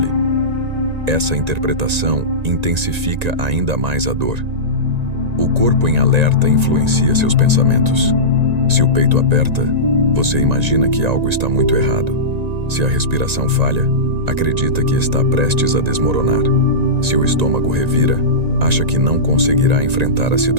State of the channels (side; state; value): left; late; 1.9 ms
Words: Essa interpretação intensifica ainda mais a dor. O corpo em alerta influencia seus pensamentos. Se o peito aperta, você imagina que algo está muito errado. Se a respiração falha, acredita que está prestes a desmoronar. Se o estômago revira, acha que não conseguirá enfrentar a